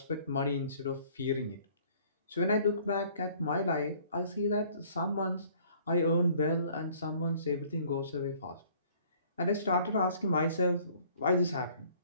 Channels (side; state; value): both; inverted; correlation -0.57